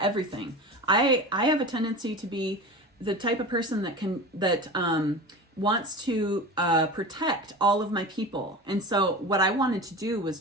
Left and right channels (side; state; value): both; normal; correlation 0.31